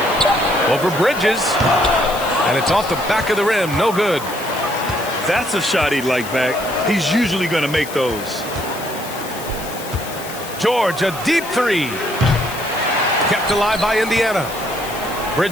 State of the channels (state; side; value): noise; left; hiss, 13 dB below the sound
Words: Over Bridges. And it's off the back of the rim. No good. That's a shot he'd like back. He's usually going to make those. George, a deep three. Kept alive by Indiana.